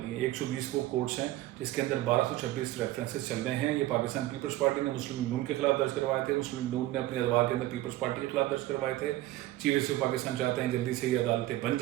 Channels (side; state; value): left; quieter; 15.9 dB